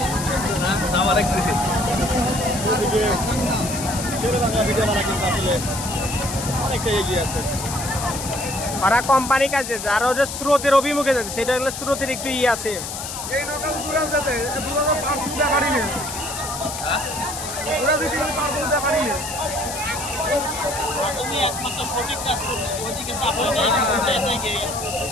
অনেকটা এগিয়ে আছে। ওরা কোম্পানি কাজে আর ওদের স্রোতের অভিমুখে যাচ্ছে, সেটা হলো স্রোতের একটু ইয়ে আছে। এই নৌকা দূরে যেতে দূরে পার তুলতে পারি না, দূরে দিতে পার তুলতে পারি না। তুমি একমাত্র সঠিক কাজ করবে, ওইদিকে চাপো না,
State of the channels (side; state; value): left; noise; hiss, 7 dB below the sound